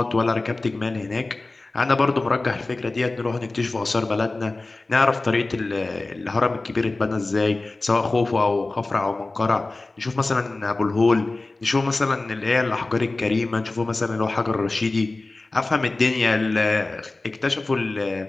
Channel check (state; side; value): quieter; right; 3.2 dB